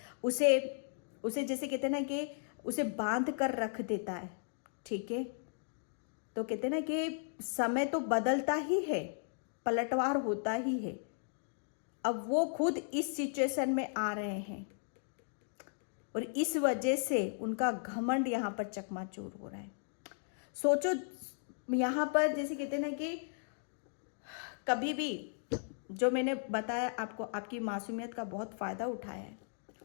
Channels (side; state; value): right; silent; digital silence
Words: उसे जैसे कहते हैं ना कि उसे बांध कर रख देता है, ठीक है, तो कहते हैं ना कि समय तो बदलता ही है, पलटवार होता ही है। अब वो खुद इस सिचुएशन में आ रहे हैं और इस वजह से उनका घमंड यहाँ पर चकनाचूर हो रहा है। सोचो यहाँ पर जैसे कहते हैं ना कि कभी भी, जो मैंने बताया आपको, आपकी मासूमियत का बहुत फ़ायदा उठाया है,